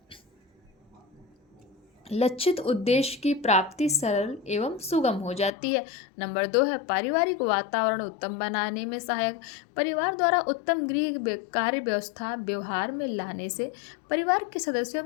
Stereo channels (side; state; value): right; drops out; at 5.5 s